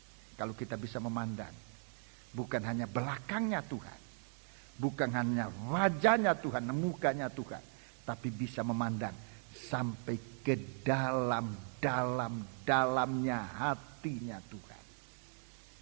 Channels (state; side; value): silent; left; 52 dB below the other